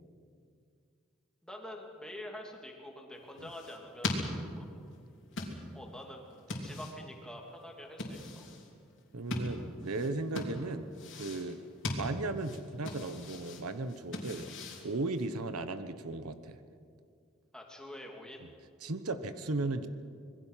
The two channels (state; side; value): normal; both; correlation 0.42